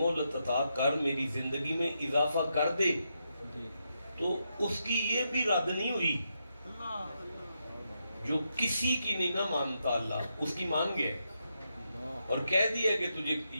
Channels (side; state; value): both; inverted; correlation -0.83